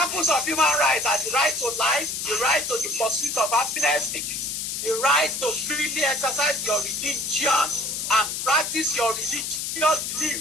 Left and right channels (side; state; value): left; noise; hiss, 3 dB below the sound